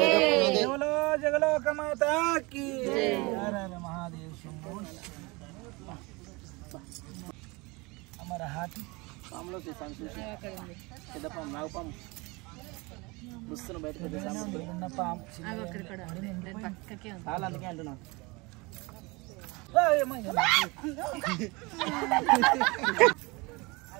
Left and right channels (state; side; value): quieter; left; 25.5 dB